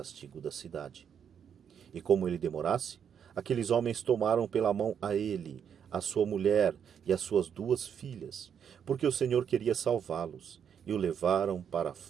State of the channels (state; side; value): quieter; left; 8.0 dB